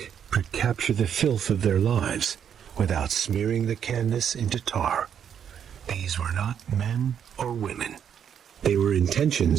could capture the filth of their lives without smearing the canvas into tar. These were not men or women. They were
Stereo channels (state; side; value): quieter; left; 8.5 dB